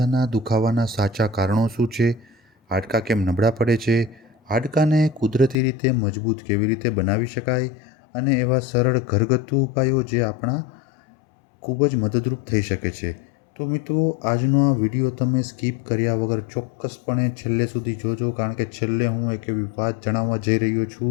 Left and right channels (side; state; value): right; drops out; at 5.6 s